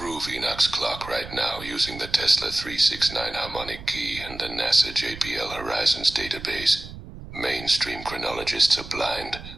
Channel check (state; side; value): noise; right; rumble, 13 dB below the sound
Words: Enoch's clock right now using the Tesla 369 harmonic key and the NASA JPL Horizons database. Mainstream chronologists are blind.